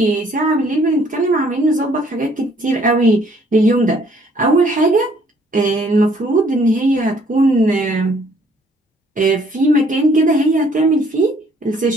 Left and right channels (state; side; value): normal; both; correlation 0.62